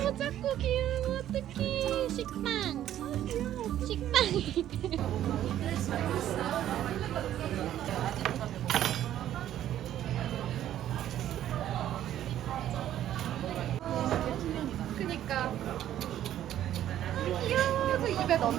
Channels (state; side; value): quieter; left; 11.8 dB